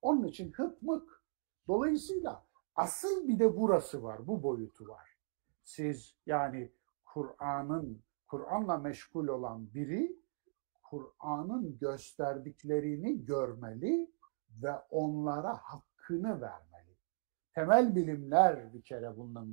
Onun için hıkmık. Dolayısıyla asıl bir de burası var, bu boyutu var. Siz yani Kur'an'la meşgul olan biri Kur'an'ın gösterdiklerini görmeli ve onlara hakkını vermeli. Temel bilimler bir kere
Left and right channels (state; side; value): silent; left; digital silence